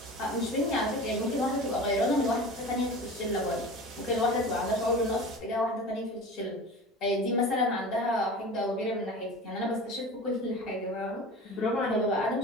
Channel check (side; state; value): both; normal; correlation 0.35